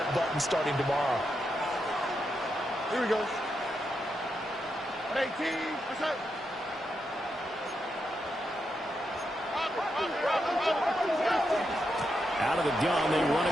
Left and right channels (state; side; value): normal; both; correlation 0.84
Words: button starting tomorrow. Here we go. 18. What's up? Out of the gun, they run